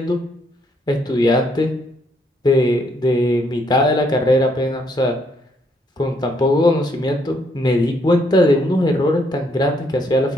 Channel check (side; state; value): both; normal; correlation 0.71